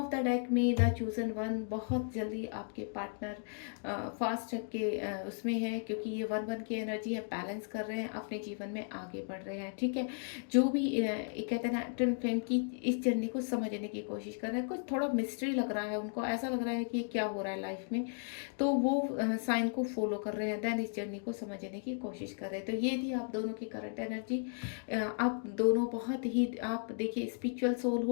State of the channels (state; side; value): silent; right; 54 dB below the other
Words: द डेक में द चूजन वन, बहुत जल्दी आपके पार्टनर फास्ट के उसमें है, क्योंकि ये 1-1 की एनर्जी है, बैलेंस कर रहे हैं, अपने जीवन में आगे बढ़ रहे हैं। ठीक है, जो भी कहते हैं ना ट्विन फ्लेम की इस जर्नी को समझने की कोशिश कर रहे हैं। कुछ थोड़ा मिस्ट्री लग रहा है उनको, ऐसा लग रहा है कि क्या हो रहा है लाइफ में, तो वो साइन को फॉलो कर रहे हैं, देन इस जर्नी को समझने की कोशिश कर रहे हैं। तो ये थी आप दोनों की करंट एनर्जी। आप दोनों बहुत ही, आप देखिए स्पिरिचुअल सोल